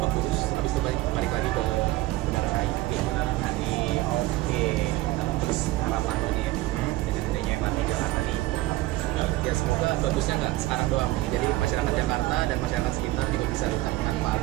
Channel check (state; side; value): quieter; left; 18.1 dB